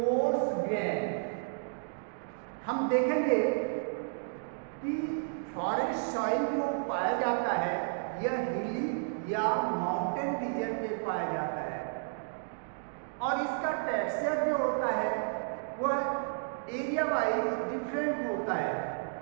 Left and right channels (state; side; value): silent; left; digital silence